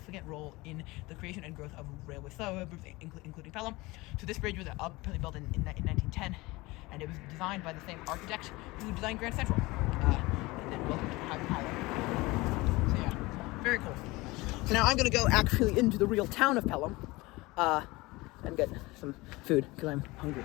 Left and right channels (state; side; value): quieter; right; 21.8 dB